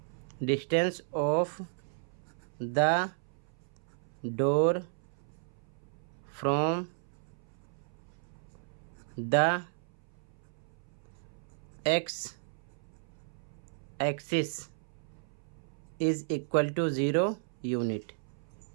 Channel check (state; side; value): silent; left; 55 dB below the other